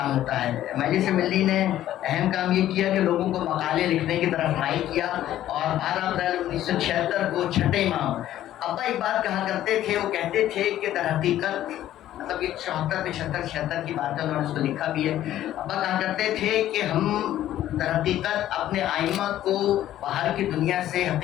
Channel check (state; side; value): quieter; right; 12.8 dB